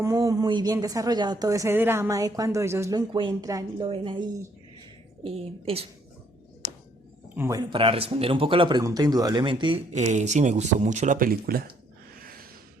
muy bien desarrollado todo ese drama de cuando ellos lo encuentran y lo ven ahí. Eso. Bueno, para responder un poco a la pregunta, indudablemente, sí me gustó mucho la película.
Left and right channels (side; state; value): both; normal; correlation 0.67